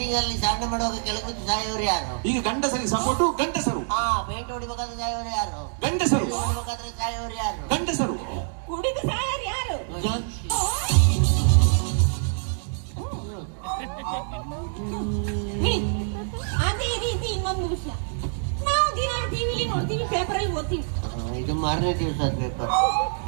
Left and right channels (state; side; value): silent; left; digital silence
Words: ಅಲ್ಲಿ ಸಾಧನೆ ಮಾಡುವಾಗ ಕೆಳಗೆ ಸಾಯೋರು ಯಾರು? ಈಗ ಗಂಡಸರಿಗೆ ಸಪೋರ್ಟು ಗಂಡಸರು. ಪೇಂಟ್ ಹೊಡಿಬೇಕಾದ್ರೆ ಸಾಯೋರು ಯಾರು? ಗಂಡಸರು. ಹೊಡಿಬೇಕಾದ್ರೆ ಸಾಯೋರು ಯಾರು? ಗಂಡಸರು. ಕುಡಿದು ಸಾಯರ್ ಯಾರು? ಅದೇ ರೀತಿ ಇನ್ನೊಂದು ವಿಷಯ, ನಾವು ದಿನ ಟಿವಿಲಿ ನೋಡ್ತೀವಿ, ಪೇಪರ್ ಅಲ್ಲಿ ಓದ್ತೀವಿ. ಇದು ಮಾರನೇ ದಿವಸ ಪೇಪರ್.